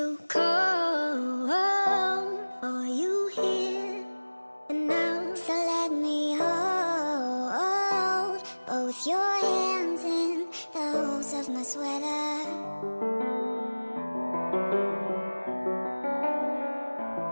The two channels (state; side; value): inverted; both; correlation -1.00